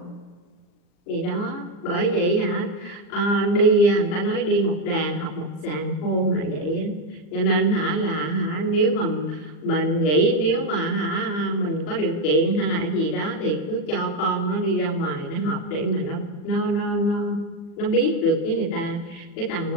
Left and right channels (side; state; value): right; late; 39 ms